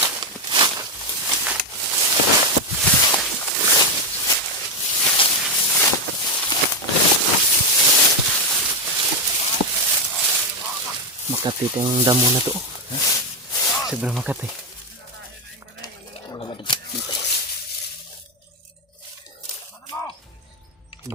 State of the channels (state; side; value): normal; both; correlation 0.06